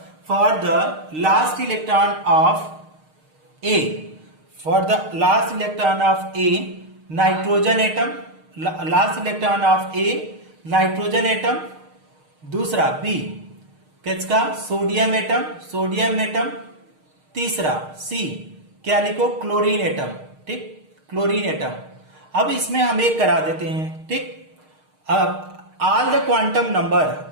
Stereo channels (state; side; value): late; left; 6.5 ms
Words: for the last electron of A, for the last electron of A nitrogen atom, last electron of A nitrogen atom, दूसरा B किसका सोडियम एटम, सोडियम एटम, तीसरा सी क्या लिखो क्लोरीन एटम, ठीक, क्लोरीन एटम। अब इसमें हम एक करा देते हैं, ठीक। अब all the quantum